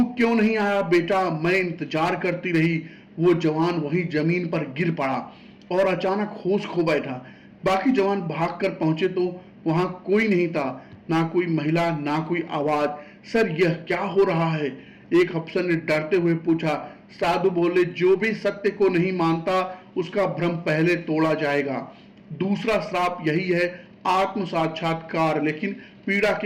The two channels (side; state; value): both; identical; correlation 1.00